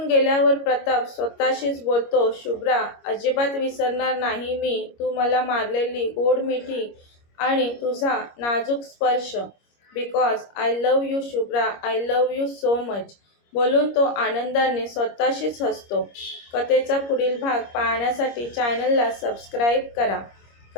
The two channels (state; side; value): late; right; 25 ms